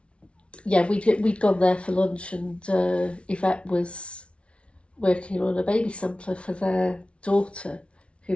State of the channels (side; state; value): right; late; 0.060 ms